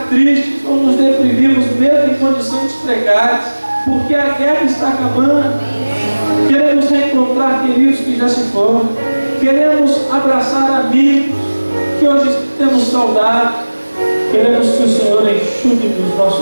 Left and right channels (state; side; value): inverted; both; correlation -1.00